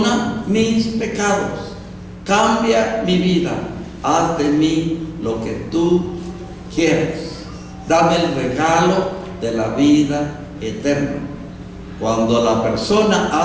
mis pecados, cambia mi vida, haz de mí lo que tú quieras, dame el regalo de la vida eterna. Cuando la persona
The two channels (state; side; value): identical; both; correlation 1.00